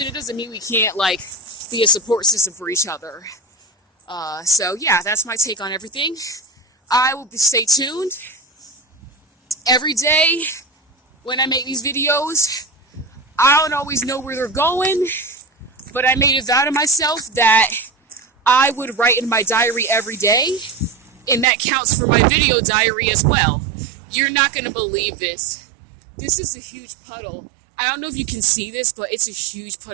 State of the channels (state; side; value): drops out; left; at 21.5 s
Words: it doesn't mean we can't like be a support system for each other. So yeah, that's my take on everything. I will stay tuned every day when I make these videos. I don't always know where they're going, but I made a vow to myself that I would write in my diary every day, and that counts for my video diary as well. You're not going to believe this. This is a huge puddle. I don't know if you can see this, but it's a huge